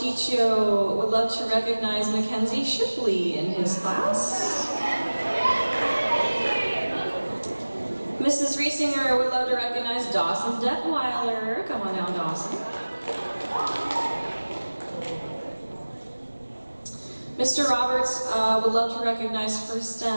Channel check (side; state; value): both; inverted; correlation -1.00